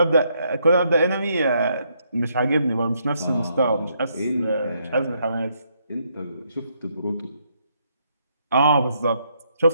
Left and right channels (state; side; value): inverted; both; correlation -0.74